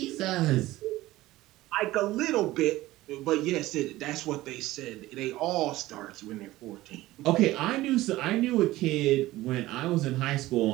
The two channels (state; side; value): quieter; left; 17.1 dB